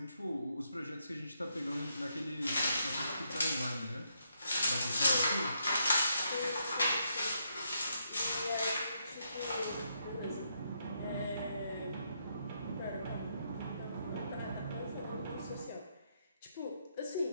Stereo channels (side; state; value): both; inverted; correlation -0.78